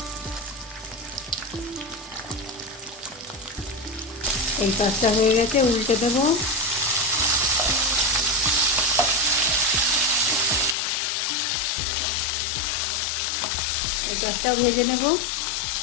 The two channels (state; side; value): drops out; right; at 10.8 s